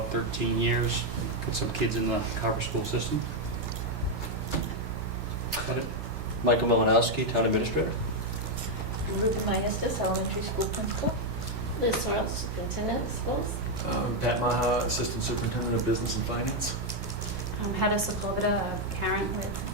13 years, got some kids in the Carver school system. Got it? Michael Malinowski, Town Administrator. Ruth Myestis, elementary school principal. Liz Sorrell, superintendent of schools. Pat Maha, Assistant Superintendent of Business and Finance. I'm Hedda Sokovita, a parent with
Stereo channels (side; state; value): both; normal; correlation 0.02